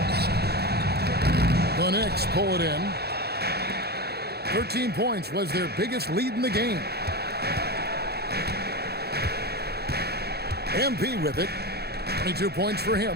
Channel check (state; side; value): late; left; 0.47 ms